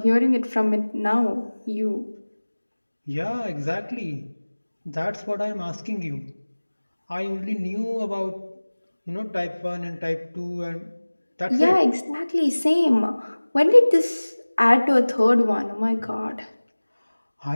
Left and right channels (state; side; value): inverted; both; correlation -1.00